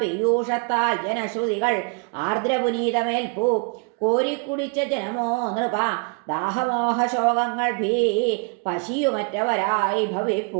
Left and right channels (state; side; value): quieter; left; 35.0 dB